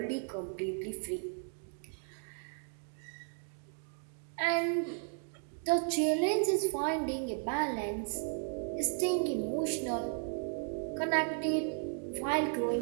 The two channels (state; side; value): silent; left; 54 dB below the other